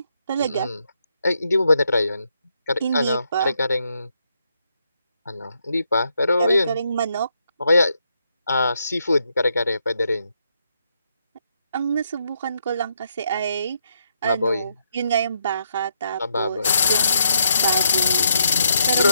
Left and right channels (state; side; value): inverted; both; correlation -0.77